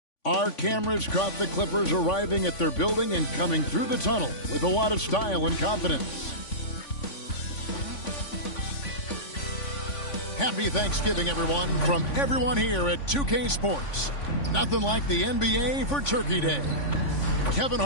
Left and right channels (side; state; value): right; late; 3.5 ms